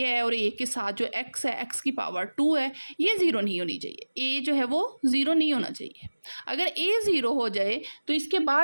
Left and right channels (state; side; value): inverted; both; correlation -1.00